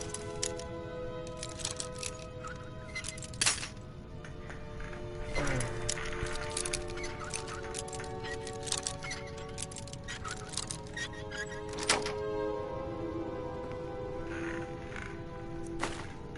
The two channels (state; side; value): identical; both; correlation 1.00